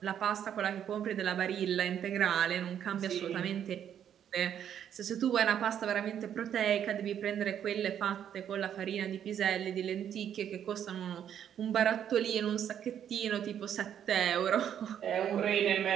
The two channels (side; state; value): left; quieter; 9.4 dB